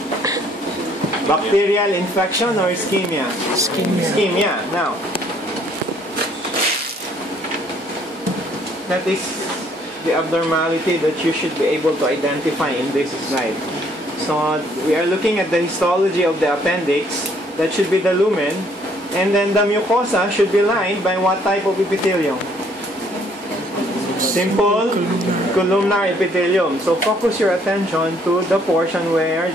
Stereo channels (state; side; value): normal; both; correlation 0.64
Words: Bacterial infection or ischemia? Ischemia. Now, that is the abnormality that you should be able to identify in this slide. So, we are looking at the histology of the appendix. That should be the lumen. And then the mucosa should be lined by what type of epithelium? Simple columnar epithelium. So focus your attention to the portion where